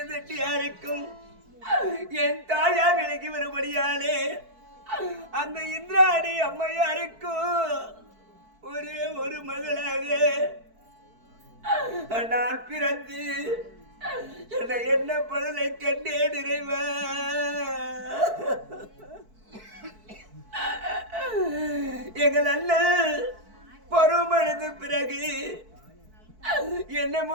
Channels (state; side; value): late; left; 4.6 ms